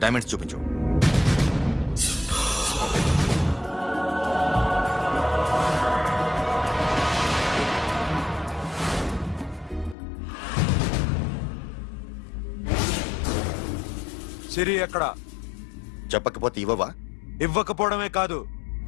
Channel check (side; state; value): right; drops out; at 10.0 s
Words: డైమండ్స్ చూపించు సిరి అక్కడ చెప్పకపోతే ఇవ్వవా ఇవ్వకపోవడమే కాదు